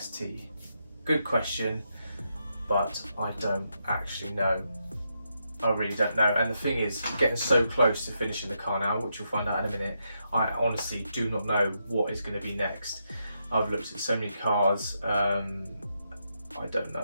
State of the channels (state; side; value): inverted; both; correlation -0.82